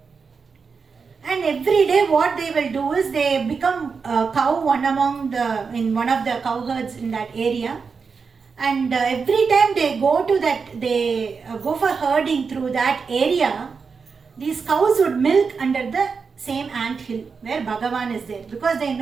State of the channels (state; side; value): quieter; left; 5.3 dB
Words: And every day what they will do is they become a cow in one of the cow herds in that area. And every time they go for herding through that area, these cows would milk under the same ant hill where Bhagavan is there. Because they